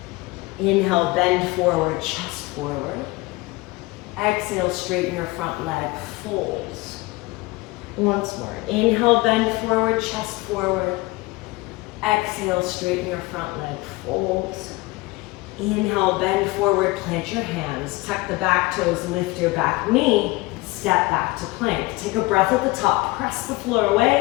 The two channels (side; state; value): right; quieter; 22.2 dB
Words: Inhale, bend forward, chest forward. Exhale, straighten your front leg, fold. Once more, inhale, bend forward, chest forward. Exhale, straighten your front leg, fold. Inhale, bend forward, plant your hands. Tuck the back toes, lift your back knee. Step back to plank. Take a breath at the top, press the floor